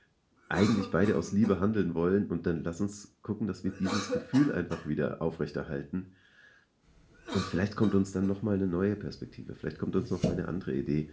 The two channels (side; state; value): both; identical; correlation 1.00